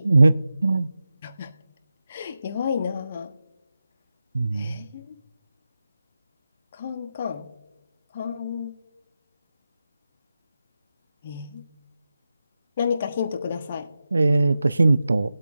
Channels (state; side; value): inverted; both; correlation -0.91